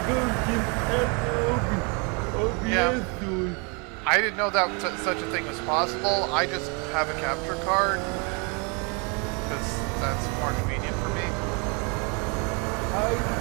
go, just add OBS to it. I didn't know that such a thing was possible. I just have a capture card because that's more convenient for me. I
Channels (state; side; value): quieter; left; 33.1 dB